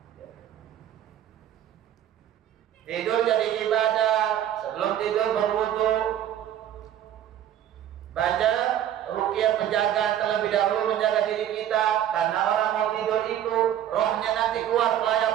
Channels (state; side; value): quieter; left; 10.9 dB